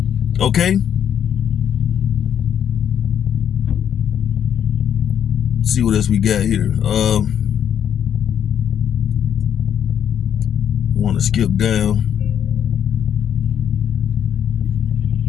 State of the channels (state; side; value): quieter; right; 9.1 dB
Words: Okay. Let's see what else we got here. Want to skip down.